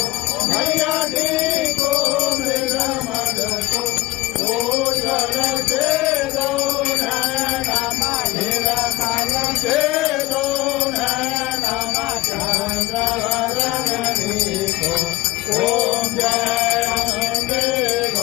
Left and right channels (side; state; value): right; quieter; 19.0 dB